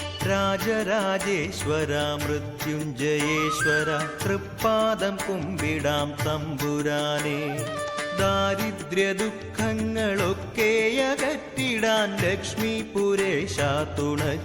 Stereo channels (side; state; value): both; identical; correlation 1.00